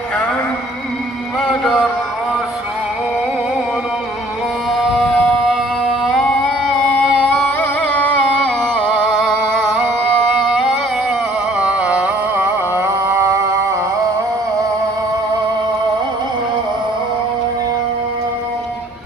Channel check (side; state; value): both; normal; correlation 0.57